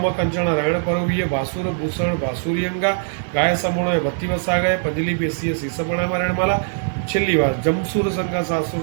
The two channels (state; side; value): silent; left; digital silence